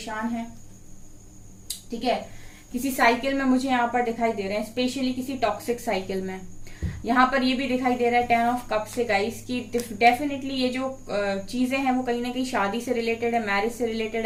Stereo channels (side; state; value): both; identical; correlation 1.00